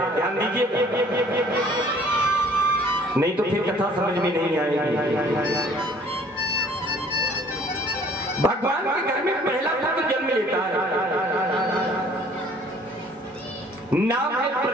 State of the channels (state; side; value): normal; both; correlation 0.55